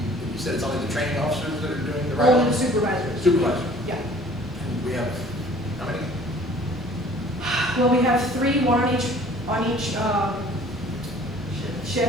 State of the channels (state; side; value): normal; both; correlation 0.52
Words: you said it's only the training officers that are doing the ride? Only the supervisors. Supervisors. Yeah. And we have, how many? Well, we have 3, one on each